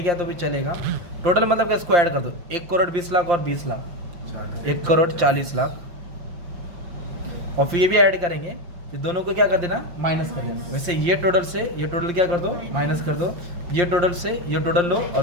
किया तो भी चलेगा। टोटल मतलब इसको ऐड कर दो, 1 करोड़ 20 लाख और 20 लाख, 1 करोड़ 40 लाख। और फिर ये भी ऐड करेंगे, फिर दोनों को क्या कर देना? माइनस कर देना। वैसे ये टोटल से ये टोटल क्या कर दो? माइनस कर दो। ये टोटल से ये टोटल लो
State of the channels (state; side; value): late; left; 5.7 ms